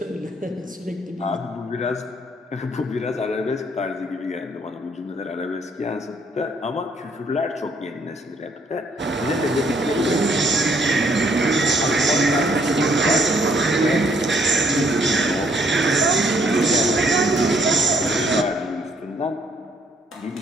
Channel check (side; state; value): both; normal; correlation 0.67